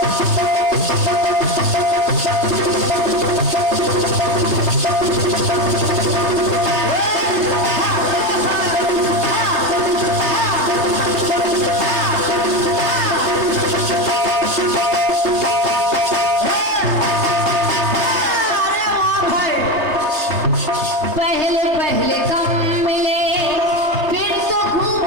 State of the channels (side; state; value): left; late; 3.3 ms